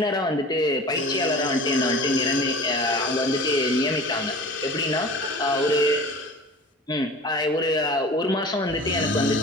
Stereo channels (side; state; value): both; normal; correlation 0.39